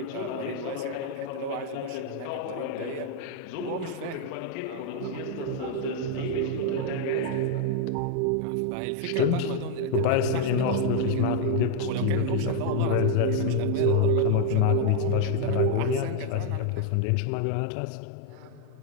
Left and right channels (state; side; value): different; both; correlation 0.00